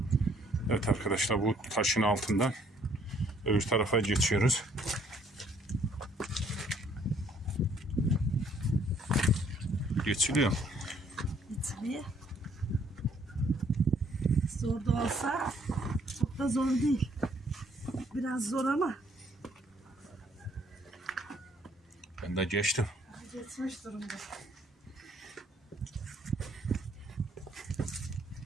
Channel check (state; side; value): normal; both; correlation 0.64